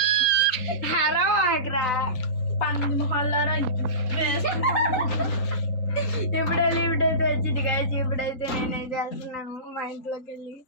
హరం ఆగ్రా పంది మొహాలారా ఇప్పుడు లిఫ్ట్ అయితే వచ్చింది గాయ్స్ ఇప్పుడైతే నేనేం చేస్తున్నాను మా ఇంట్లోకి వెళ్ళి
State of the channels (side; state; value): right; late; 3.9 ms